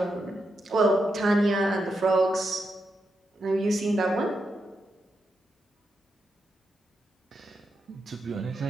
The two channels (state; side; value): normal; both; correlation 0.85